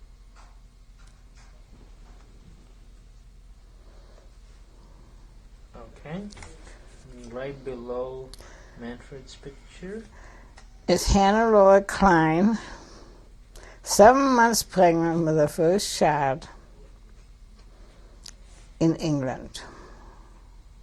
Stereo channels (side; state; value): both; identical; correlation 1.00